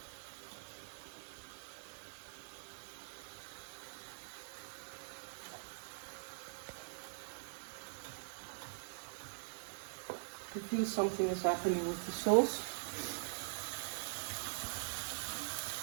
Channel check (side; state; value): left; silent; digital silence